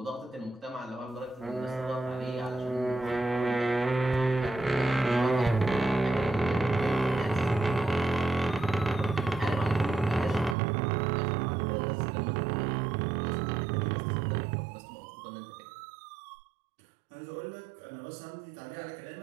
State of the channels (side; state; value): left; drops out; at 10.6 s